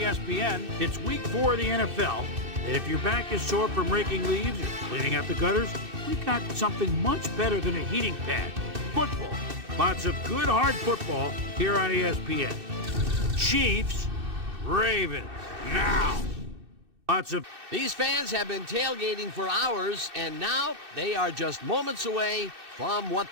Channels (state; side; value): late; left; 2.6 ms